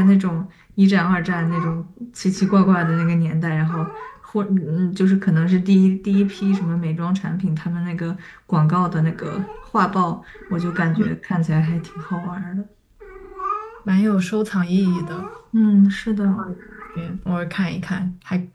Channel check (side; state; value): both; identical; correlation 1.00